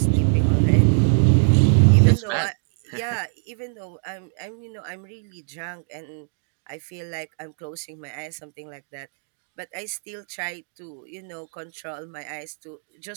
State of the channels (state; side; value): silent; left; digital silence